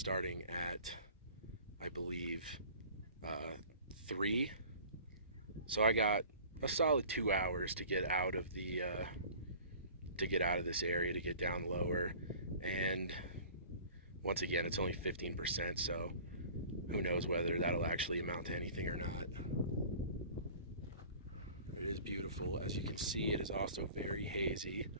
at, I believe, 3. So I got a solid 2 hours to get out of this area, to get down lower. And once again, it's only 15%, so who knows whether that'll actually amount to anything or not. It is beautiful. As you can see, it is also very hazy.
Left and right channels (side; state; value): both; inverted; correlation -0.45